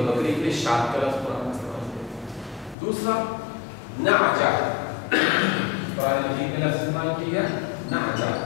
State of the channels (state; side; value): drops out; right; at 2.8 s